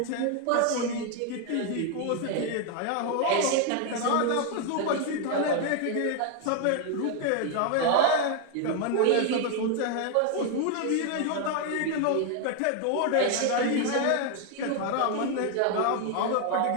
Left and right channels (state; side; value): different; both; correlation 0.01